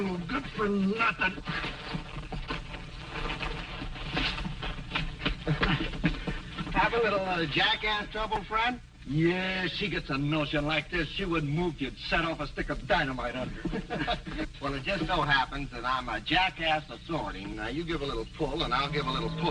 good for nothing. Have a little jackass trouble, friend? Yeah, she gets a notion like this, she wouldn't move you'd set off a stick of dynamite under. Well, it just so happens that I'm a jackass of sorting. Now, you give a little pull, and I'll give a little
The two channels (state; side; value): identical; both; correlation 1.00